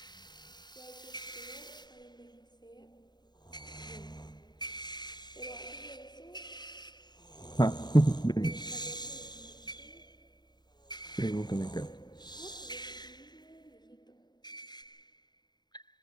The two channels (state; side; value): late; right; 0.21 ms